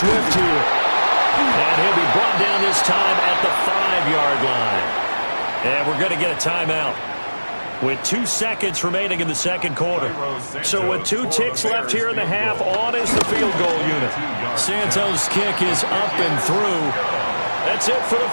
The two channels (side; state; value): both; inverted; correlation -1.00